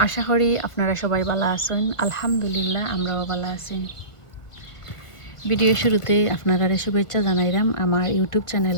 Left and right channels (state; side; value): late; right; 1.5 ms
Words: আশা করি আপনারা সবাই ভালো আছেন। আলহামদুলিল্লাহ, আমরাও ভালো আছি। ভিডিও শুরুতে আপনারা শুভেচ্ছা জানাইলাম আমার ইউটিউব